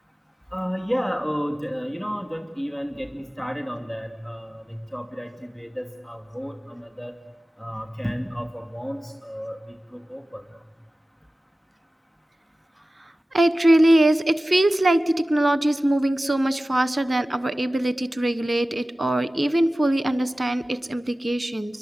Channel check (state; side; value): normal; both; correlation 0.96